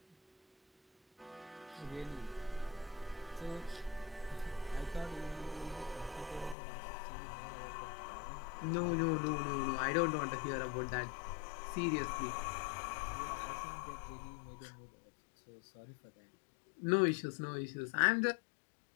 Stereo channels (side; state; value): right; drops out; at 6.6 s